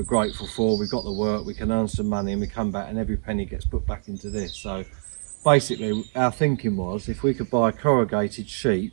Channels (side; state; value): left; silent; digital silence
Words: grateful for. We've got the work, we can earn some money, and we come back and every penny gets put back into this. So basically our thinking was, if we could buy a corrugated